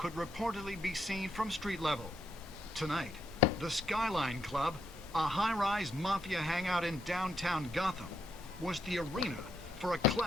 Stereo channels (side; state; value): both; normal; correlation 0.78